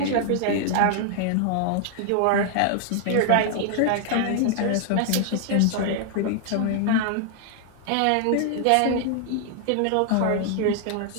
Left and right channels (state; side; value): different; both; correlation 0.00